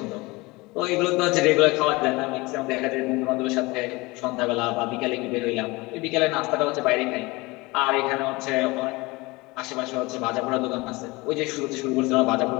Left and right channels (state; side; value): quieter; right; 23.3 dB